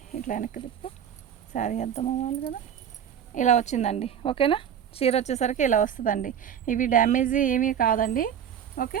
ఇట్లా వెనక్కి తిప్పు, శారీ అర్థం అవ్వాలి కదా, ఇలా వచ్చిందండి. ఓకేనా. చీర వచ్చేసరికి ఇలా వస్తుందండి. ఇవి డ్యామేజీ ఏమీ కాదండి. ఓకే.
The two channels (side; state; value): left; quieter; 8.9 dB